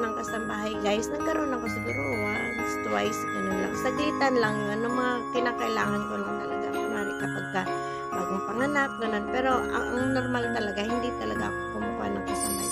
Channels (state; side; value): identical; both; correlation 1.00